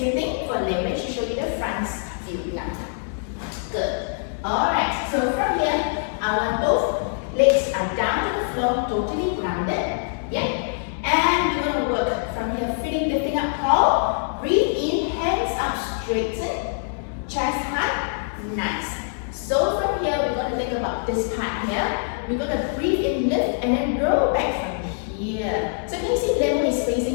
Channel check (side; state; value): right; silent; digital silence